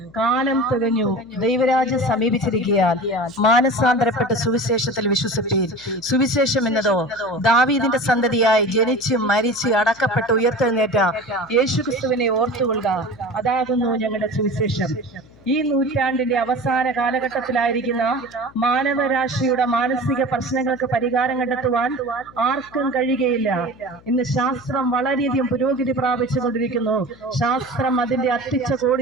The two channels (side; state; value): left; noise; hum, 26 dB below the sound